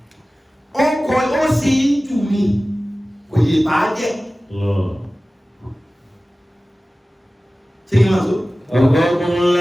ọkọ̀ ó sì ń jù mí kò yè bá jẹ́ ṣe kí n máa so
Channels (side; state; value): both; normal; correlation 0.97